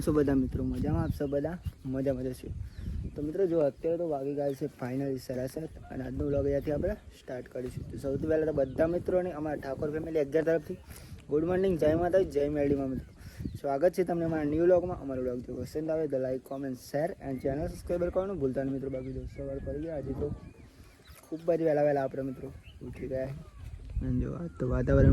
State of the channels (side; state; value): both; identical; correlation 1.00